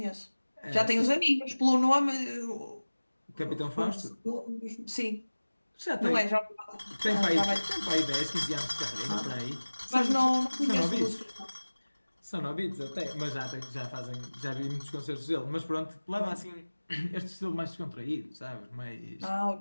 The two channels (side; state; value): both; inverted; correlation -1.00